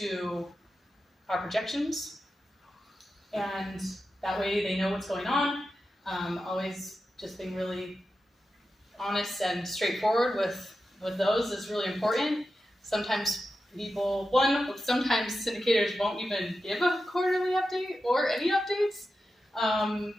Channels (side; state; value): both; normal; correlation 0.91